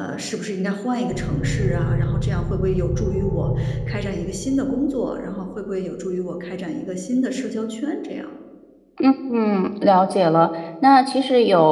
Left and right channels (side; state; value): both; identical; correlation 1.00